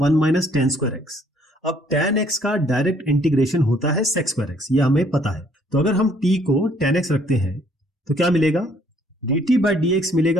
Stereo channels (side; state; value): both; normal; correlation 0.64